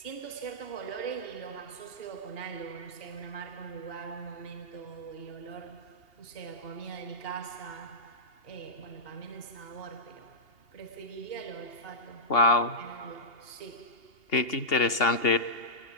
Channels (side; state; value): right; late; 2.8 ms